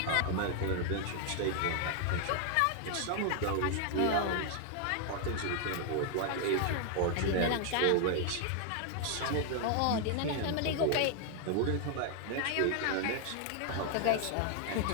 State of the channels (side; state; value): both; different; correlation 0.00